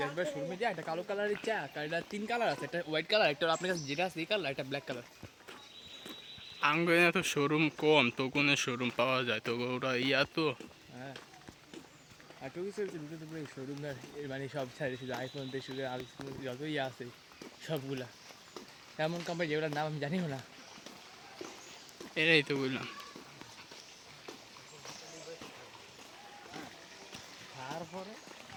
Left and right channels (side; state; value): both; identical; correlation 1.00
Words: একবার শোরুমে যা একটা কালো কালারের চা, এটা 3 কালার আছে, একটা হোয়াইট কালার, একটা আপনার কাছে যেটা আছে এই কালার, একটা ব্ল্যাক কালার। আঙ্গনে তো শোরুম কম, তো কোনো শোরুম পাওয়া যায় তো ওরা ইয়া তো। হ্যাঁ আর টুকি চলছে ভিতরে পুরো শোরুম মানে সব ছাড়ে, শুধু আইফোন থেকে শুধু আইফোন যত ইয়ে আছে সবগুলা, এমন কোম্পানি যেগুলোর নাম আমি জানিও না। এরাই তো বললাম। তারপরে